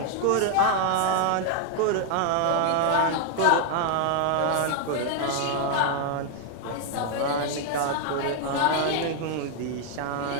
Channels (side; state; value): both; different; correlation 0.00